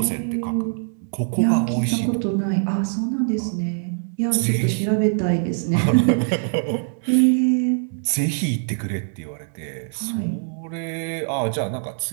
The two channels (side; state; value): left; silent; 64 dB below the other